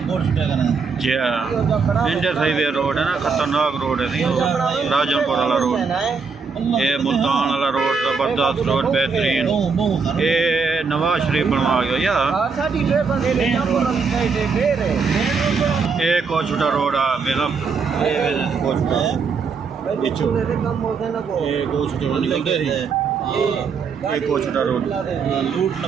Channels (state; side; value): quieter; left; 5.2 dB